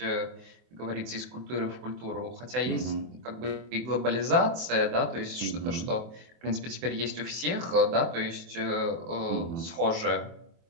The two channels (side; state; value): left; late; 24 ms